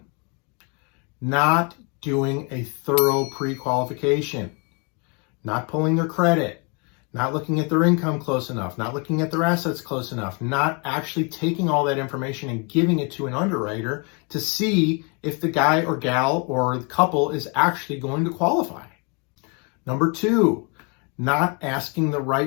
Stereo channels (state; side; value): quieter; right; 33.9 dB